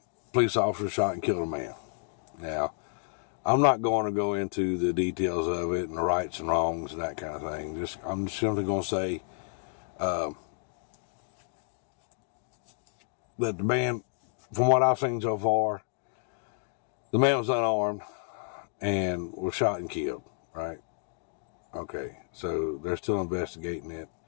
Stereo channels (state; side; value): silent; right; digital silence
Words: police officer shot and killed a man. Now, I'm not going to go into the details of it and the rights and wrongs and that kind of thing. I'm simply going to say that the man, from what I've seen so far, the man was unarmed and was shot and killed, right? Okay, so they're still investigating it.